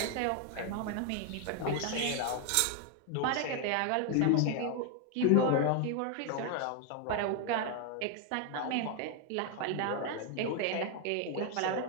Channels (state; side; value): different; both; correlation 0.01